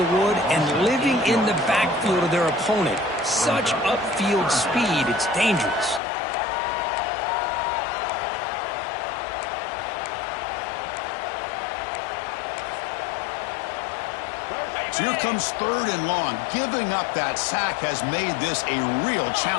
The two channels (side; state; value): right; drops out; at 6.0 s